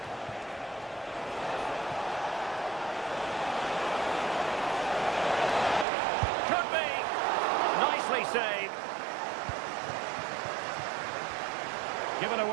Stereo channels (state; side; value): drops out; left; at 5.9 s